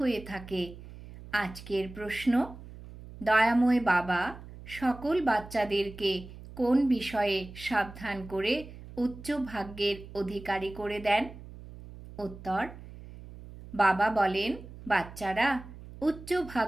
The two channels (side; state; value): right; noise; hum, 16 dB below the sound